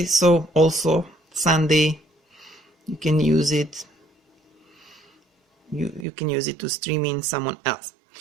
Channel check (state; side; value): drops out; left; at 6.1 s